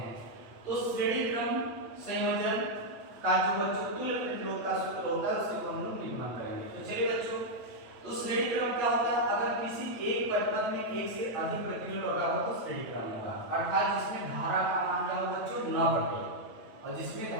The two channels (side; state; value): left; late; 8.7 ms